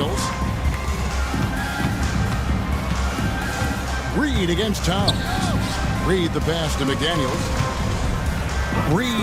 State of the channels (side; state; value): both; identical; correlation 1.00